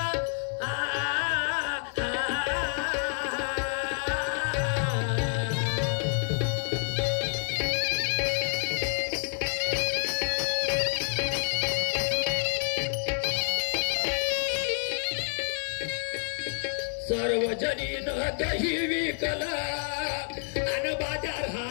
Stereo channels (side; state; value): right; silent; 59 dB below the other